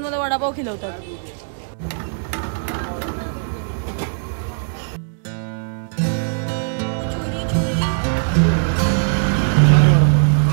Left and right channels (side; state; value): left; silent; digital silence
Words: मला वडापाव खिलवतात.